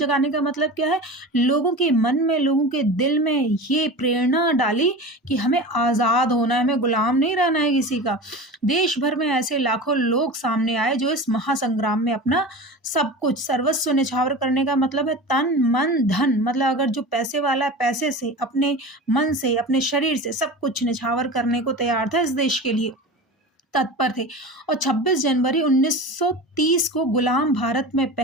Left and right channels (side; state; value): both; normal; correlation 0.31